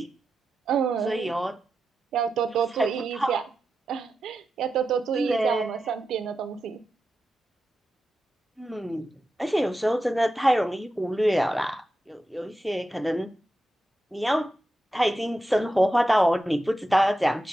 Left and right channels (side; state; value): both; normal; correlation 0.90